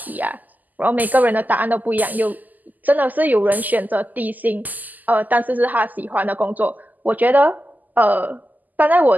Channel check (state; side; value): late; left; 0.082 ms